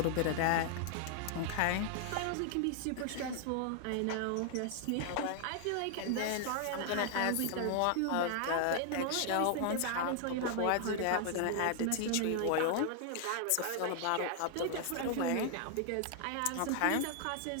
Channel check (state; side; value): different; both; correlation 0.00